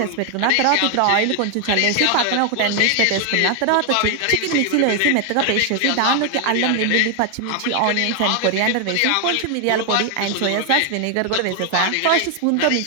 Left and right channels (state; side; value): different; both; correlation 0.00